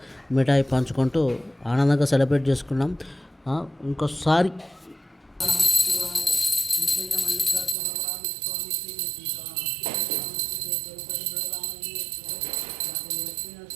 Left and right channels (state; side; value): drops out; left; at 7.8 s